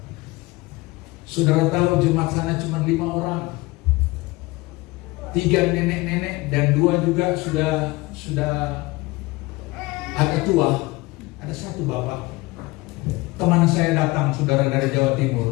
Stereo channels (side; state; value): right; quieter; 22.1 dB